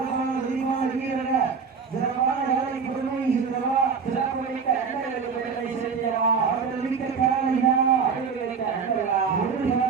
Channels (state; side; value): quieter; left; 5.8 dB